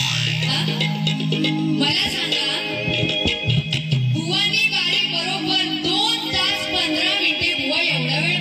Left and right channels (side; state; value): both; identical; correlation 1.00